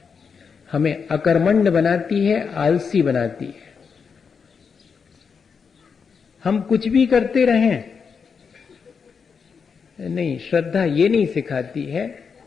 हमें अकर्मण्य बनाती है, आलसी बनाती है। हम कुछ भी करते रहें, नहीं, श्रद्धा ये नहीं सिखाती है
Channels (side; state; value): right; quieter; 6.0 dB